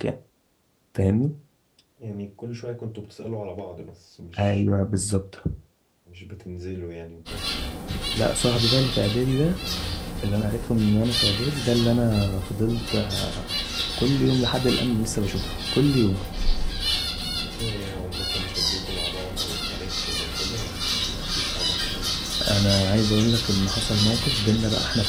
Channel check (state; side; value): identical; both; correlation 1.00